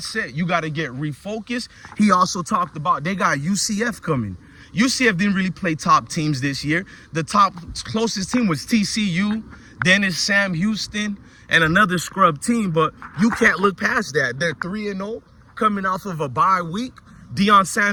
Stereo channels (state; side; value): identical; both; correlation 1.00